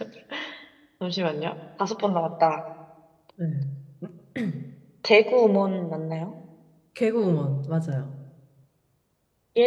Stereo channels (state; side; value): identical; both; correlation 1.00